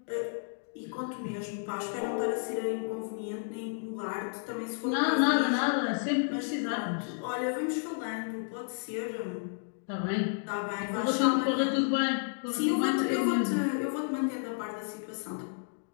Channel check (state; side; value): silent; right; digital silence